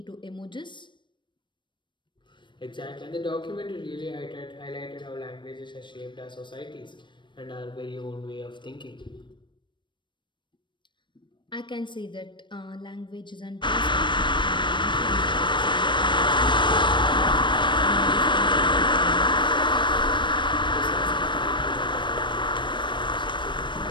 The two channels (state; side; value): late; right; 0.23 ms